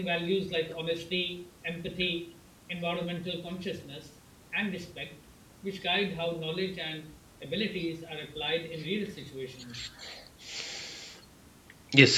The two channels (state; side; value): identical; both; correlation 1.00